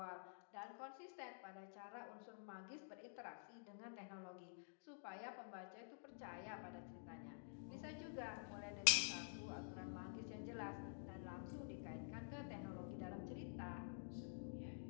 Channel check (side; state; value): right; silent; digital silence